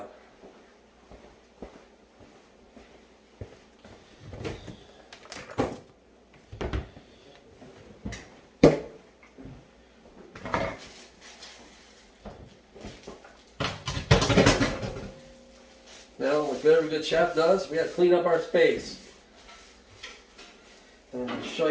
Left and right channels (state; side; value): identical; both; correlation 1.00